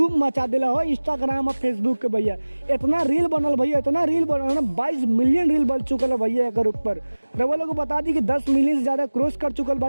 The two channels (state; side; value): inverted; both; correlation -1.00